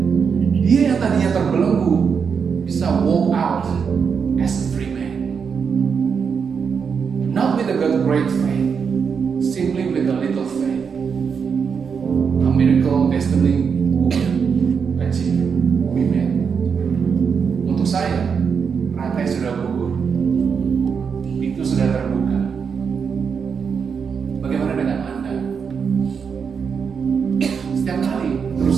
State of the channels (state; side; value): quieter; left; 6.3 dB